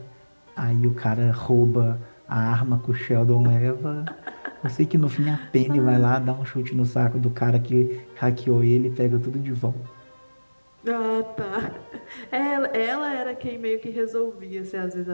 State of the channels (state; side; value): inverted; both; correlation -1.00